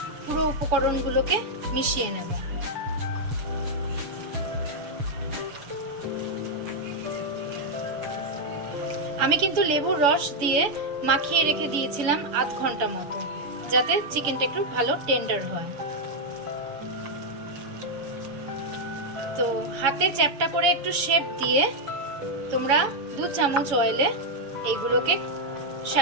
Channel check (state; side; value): late; left; 7.0 ms